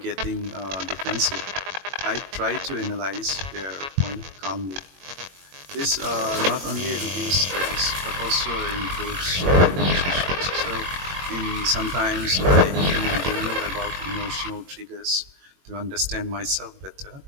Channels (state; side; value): late; left; 21 ms